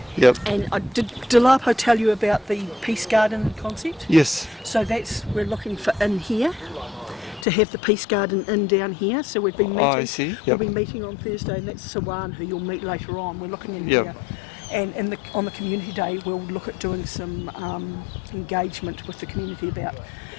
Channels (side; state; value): right; drops out; at 7.5 s